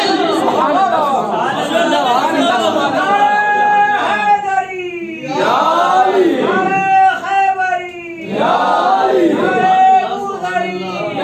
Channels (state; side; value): identical; both; correlation 1.00